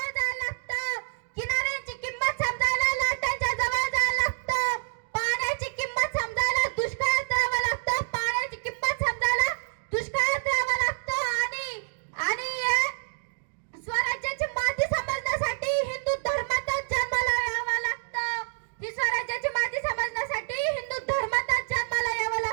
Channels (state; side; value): silent; left; digital silence